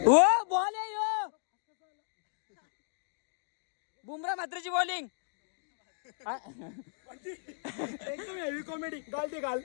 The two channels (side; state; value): right; silent; digital silence